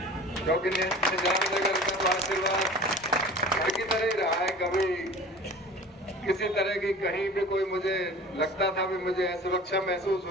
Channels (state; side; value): normal; both; correlation 0.41